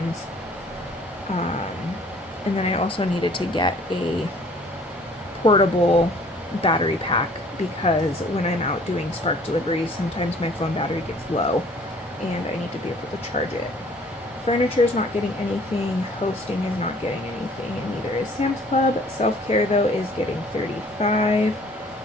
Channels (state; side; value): normal; both; correlation 0.55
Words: And then I also needed to get a portable battery pack because when I'm out doing Spark deliveries, sometimes my phone battery gets low and I need to be able to charge it. Furniture is not getting anything. Hosting is not getting anything, and neither is Sam's Club. Self-care, though, is getting $35,